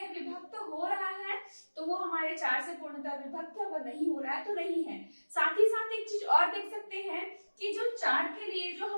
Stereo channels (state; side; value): inverted; both; correlation -1.00